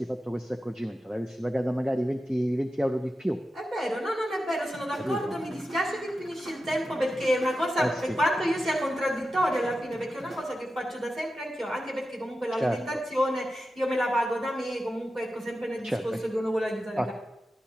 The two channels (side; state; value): both; normal; correlation 0.91